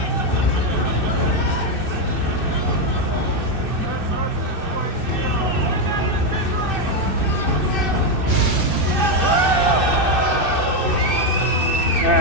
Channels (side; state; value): right; late; 2.6 ms